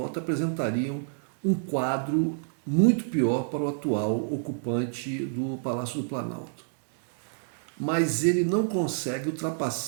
apresentariam um quadro muito pior para o atual ocupante do Palácio do Planalto. Mas ele não consegue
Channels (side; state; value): left; silent; digital silence